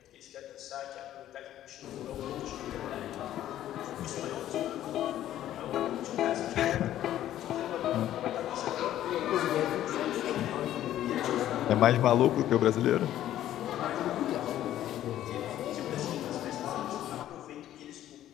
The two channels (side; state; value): right; quieter; 12.5 dB